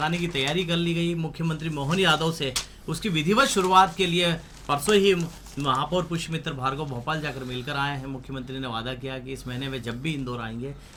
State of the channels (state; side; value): identical; both; correlation 1.00